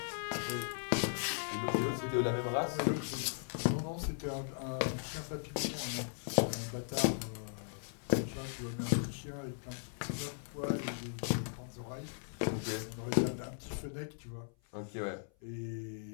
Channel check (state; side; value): silent; right; 53 dB below the other